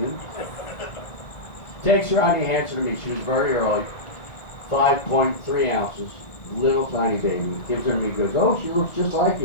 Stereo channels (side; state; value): right; late; 1.4 ms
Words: Takes her out and he hands her to me. She was very early. 5.3 ounces. Little tiny baby. Gives her to me. Goes, oh, she looks just like